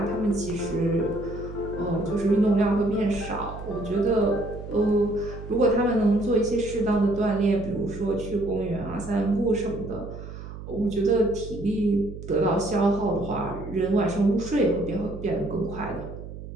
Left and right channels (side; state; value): right; noise; hum, 12 dB below the sound